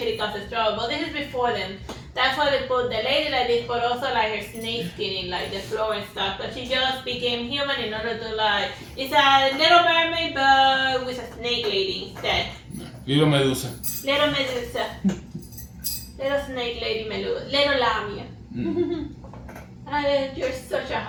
causes trouble. But this is before them. That's why they put the lady like this, but also like her snake skin in like the floor and stuff. But she just became human in order to like, it's a little mermaid but with a snake lady instead. Little Medusa. Little Medusa. Little snake lady Medusa. Little Lamia. You're such a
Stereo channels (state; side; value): identical; both; correlation 1.00